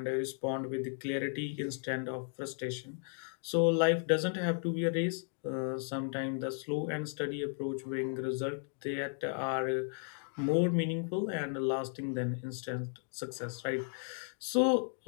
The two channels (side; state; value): right; silent; 55 dB below the other